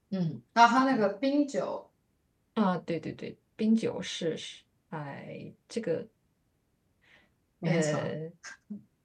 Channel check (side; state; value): both; identical; correlation 1.00